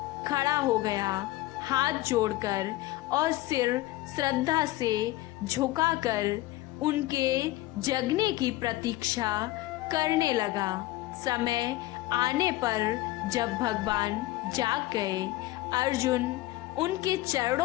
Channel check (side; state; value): right; quieter; 17.5 dB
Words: खड़ा हो गया, हाथ जोड़कर और सिर श्रद्धा से झुकाकर उनके जगने की प्रतीक्षा करने लगा। समय आने पर जब भगवान जाग गए, अर्जुन उनके